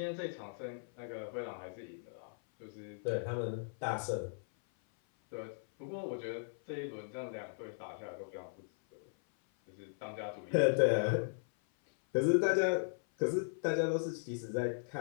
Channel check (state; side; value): silent; right; 53 dB below the other